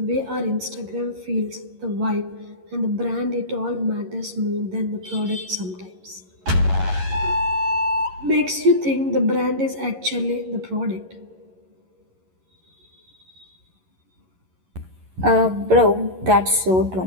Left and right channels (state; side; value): late; left; 11 ms